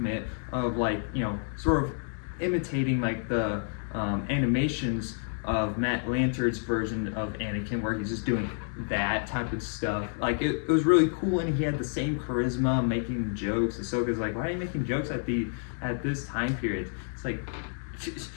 of, like, sort of imitating like the animations of Matt Lanter's version of Anakin, where he's just doing that type of stuff. Like, it was really cool, and he had the same charisma, making jokes. Ahsoka's like, why are you making jokes at this time period? It's like,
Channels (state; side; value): silent; right; 58 dB below the other